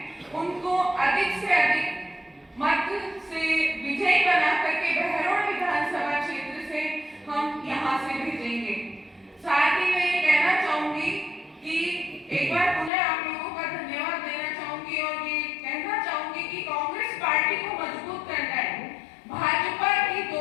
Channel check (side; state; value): right; drops out; at 12.9 s